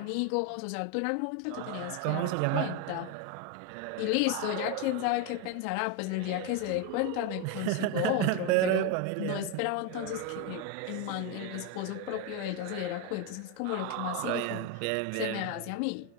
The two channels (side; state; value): both; different; correlation 0.02